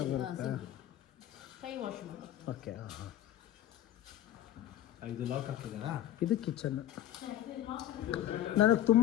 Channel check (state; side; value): quieter; right; 12.5 dB